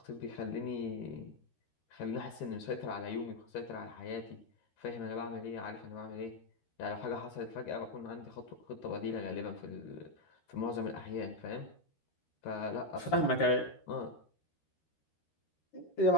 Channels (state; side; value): late; right; 13 ms